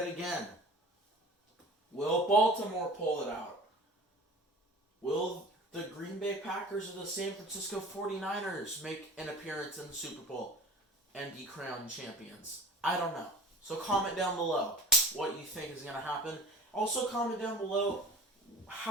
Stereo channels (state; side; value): normal; both; correlation 0.40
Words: again? Will Baltimore pull it out? Will the Green Bay Packers or the San Francisco 49ers make an appearance in the Super Bowl and be crowned champions? I don't know. So comment down below what you think is going to happen. Also comment down below